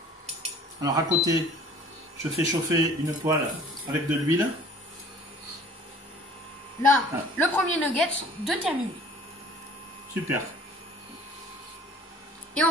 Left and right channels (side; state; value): both; normal; correlation 0.49